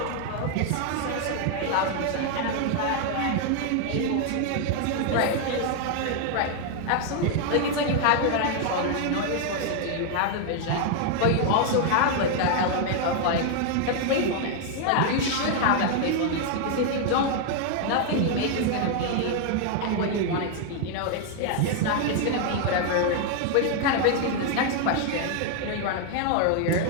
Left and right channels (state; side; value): different; both; correlation 0.00